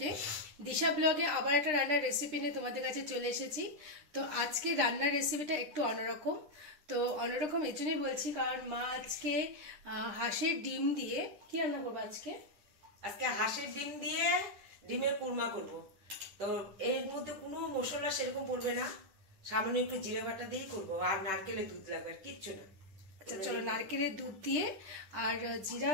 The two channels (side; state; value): left; late; 9.9 ms